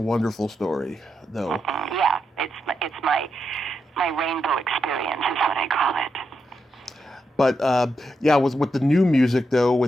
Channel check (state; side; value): normal; both; correlation 0.84